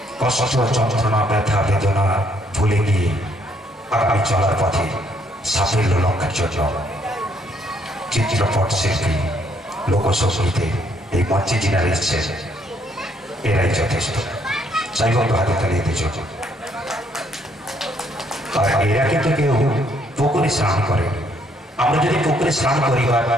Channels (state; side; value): normal; both; correlation 0.69